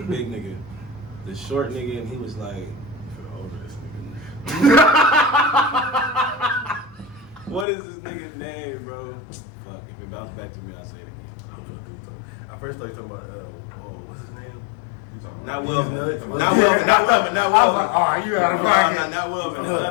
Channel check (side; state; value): right; drops out; at 7.7 s